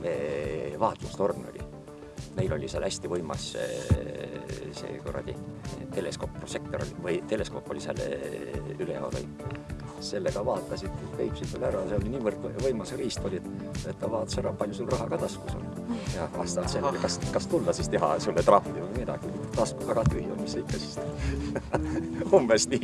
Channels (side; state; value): both; identical; correlation 1.00